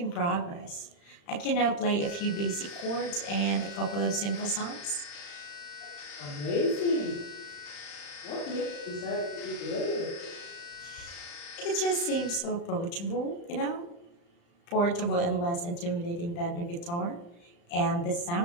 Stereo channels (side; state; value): right; late; 35 ms